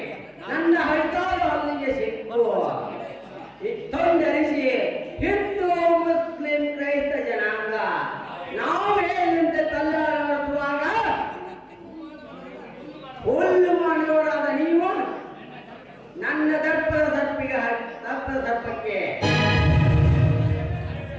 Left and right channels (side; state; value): both; identical; correlation 1.00